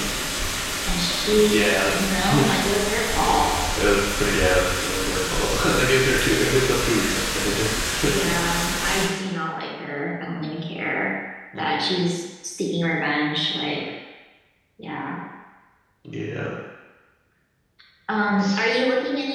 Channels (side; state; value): both; identical; correlation 1.00